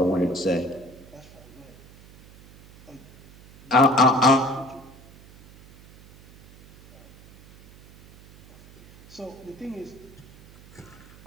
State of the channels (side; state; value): right; noise; hum, 23 dB below the sound